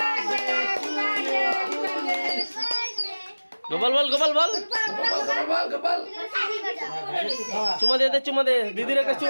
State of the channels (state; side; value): inverted; both; correlation -1.00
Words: Gopal বল, গোপাল বল, গোপাল চুমা দে দিদির একটা